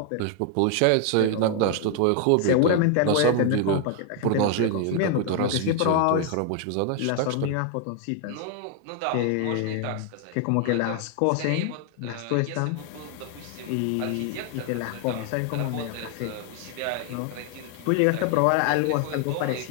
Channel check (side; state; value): both; different; correlation 0.00